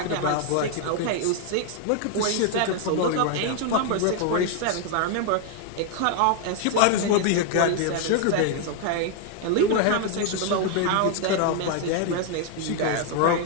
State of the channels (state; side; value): different; both; correlation 0.00